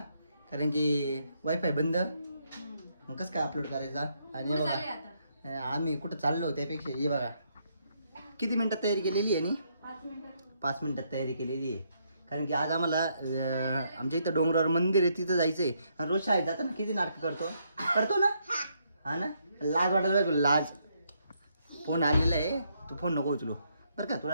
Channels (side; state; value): both; inverted; correlation -0.75